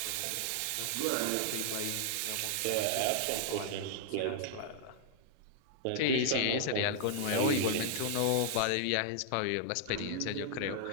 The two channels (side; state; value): both; different; correlation -0.01